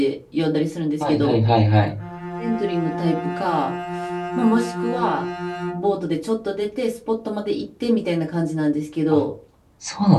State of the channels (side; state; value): both; identical; correlation 1.00